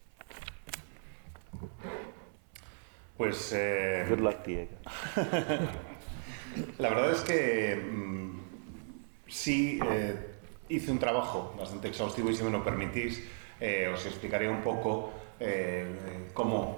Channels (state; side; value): silent; left; 54 dB below the other